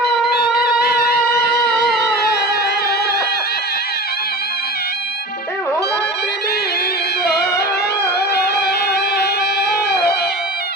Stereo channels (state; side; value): normal; both; correlation 0.32